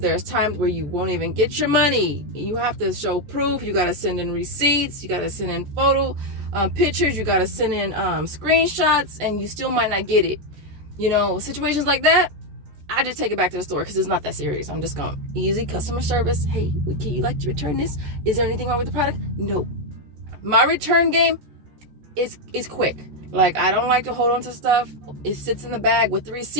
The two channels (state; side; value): late; left; 14 ms